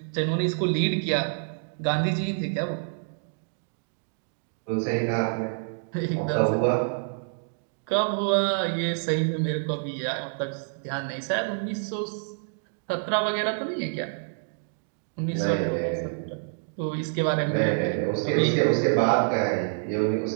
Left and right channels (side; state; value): left; silent; digital silence